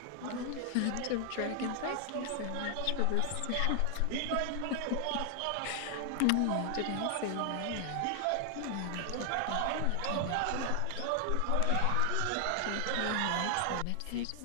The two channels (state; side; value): different; both; correlation 0.00